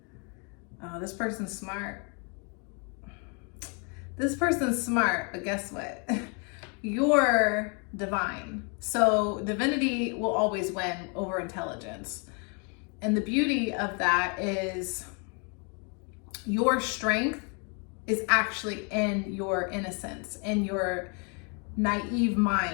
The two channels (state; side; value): quieter; right; 36.0 dB